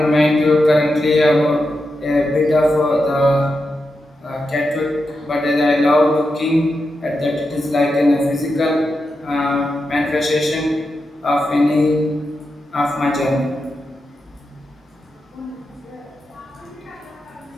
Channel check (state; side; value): normal; both; correlation 0.88